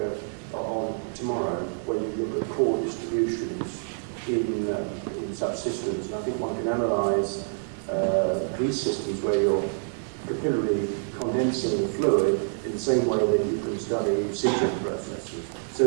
on tomorrow, when you look at core distributions in such systems. And I think one can analyse these systems where you're capillarily condensing the fluid in the same way that you can study sintering processes. So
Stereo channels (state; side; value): silent; left; digital silence